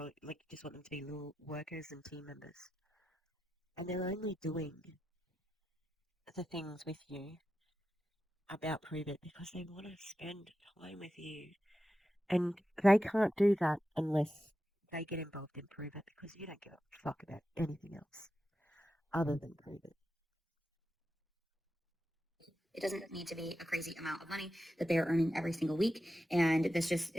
like just want them to be little workers and team members? And they're only doing the things with you about Pruvit because they want to spend time with you. And they can't do that unless they get involved in Pruvit, because you don't give a fuck about anything else other than Pruvit. it doesn't need to be a crazy amount of money that they are earning every single week, and this just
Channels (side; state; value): both; normal; correlation 0.90